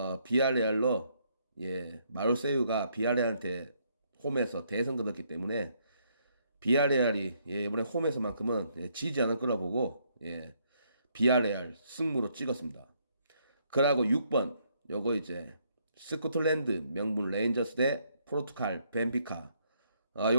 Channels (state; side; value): inverted; both; correlation -0.71